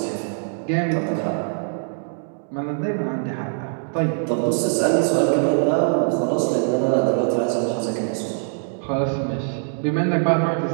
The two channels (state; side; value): silent; left; digital silence